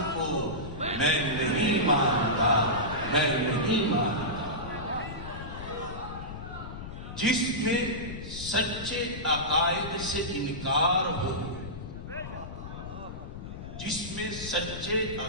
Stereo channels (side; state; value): left; noise; rumble, 10 dB below the sound